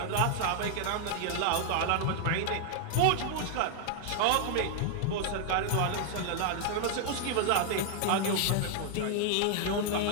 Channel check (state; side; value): different; both; correlation 0.00